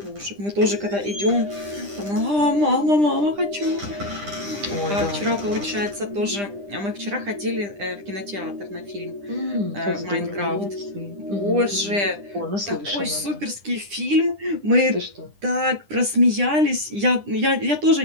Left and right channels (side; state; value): left; late; 10 ms